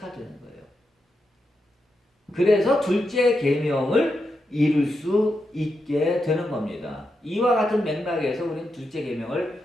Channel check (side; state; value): both; normal; correlation 0.85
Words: 되는 거예요. 그래서 둘째 계명을 이룰 수 있게 되는 겁니다. 이와 같은 맥락에서 우리는 둘째